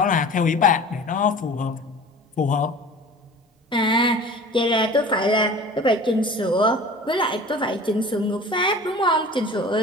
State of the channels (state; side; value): normal; both; correlation 0.41